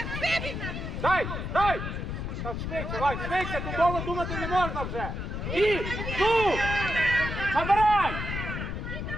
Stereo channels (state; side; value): noise; left; rumble, 4 dB below the sound